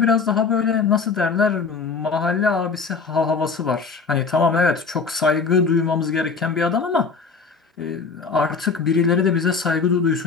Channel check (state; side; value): quieter; right; 5.0 dB